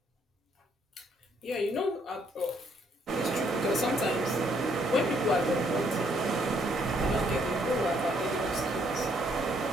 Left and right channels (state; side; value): normal; both; correlation 0.69